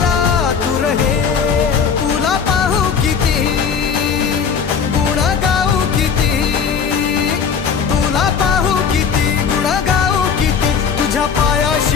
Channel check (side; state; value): right; quieter; 6.6 dB